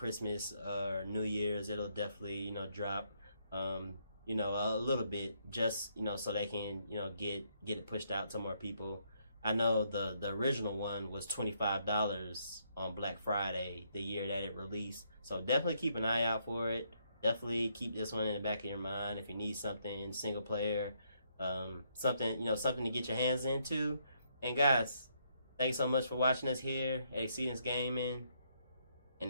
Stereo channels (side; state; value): both; inverted; correlation -0.73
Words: or New Year's, it'll definitely drop a little bit, just so they can get it pushed out to more people. I know the original one was $25 on Black Friday the year that it released, so definitely keep an eye out for it. Definitely keep this one in the back of your mind if you need something single player, something to get your hands into. And guys, thanks so much for watching us here at Exceedance Gaming.